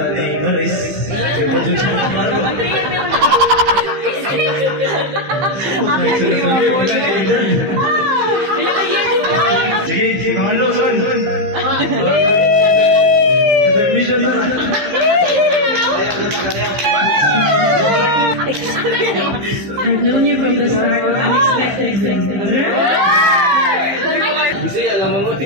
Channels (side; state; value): left; late; 15 ms